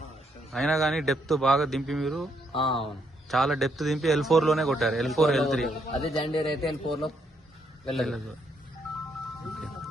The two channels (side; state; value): both; normal; correlation 0.74